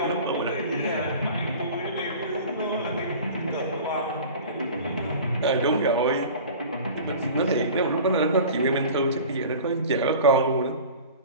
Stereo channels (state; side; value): inverted; both; correlation -0.40